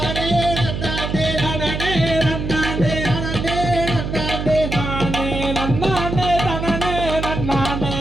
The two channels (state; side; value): noise; right; hum, 4 dB below the sound